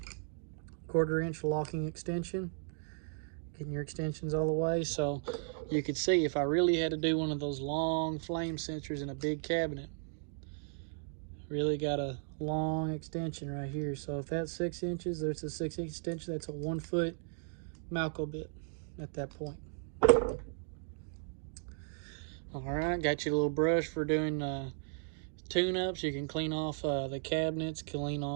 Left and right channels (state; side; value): silent; left; 54 dB below the other